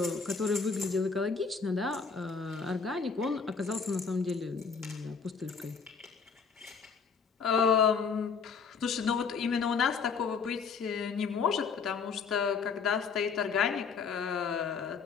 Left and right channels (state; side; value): quieter; right; 5.6 dB